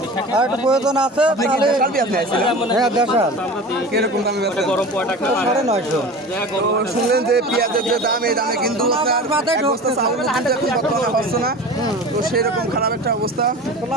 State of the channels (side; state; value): both; normal; correlation 0.34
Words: আর একটু প্রয়োজন আছে তাহলে। দেশাল পেঁয়াজ নিয়েছিলেন? হ্যাঁ দেশাল। কিরকম দামে বেচেন? 950। তো শুনলেন যে পেঁয়াজের যে দাম, এই দামে কিন্তু আপনার এক বস্তা চাউল কিন্তু এখন বর্তমানে হচ্ছে না। তো সেরকম খারাপ একটা অবস্থা।